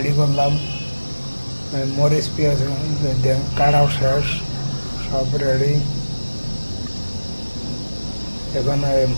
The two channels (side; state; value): both; inverted; correlation -1.00